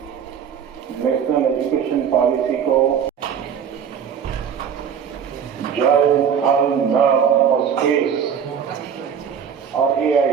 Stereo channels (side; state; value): left; quieter; 7.7 dB